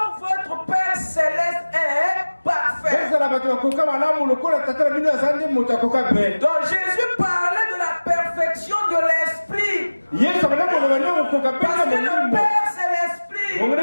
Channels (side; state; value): both; inverted; correlation -1.00